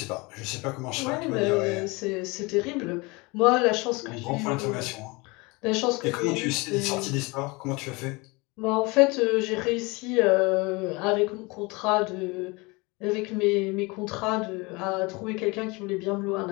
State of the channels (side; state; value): right; quieter; 25.8 dB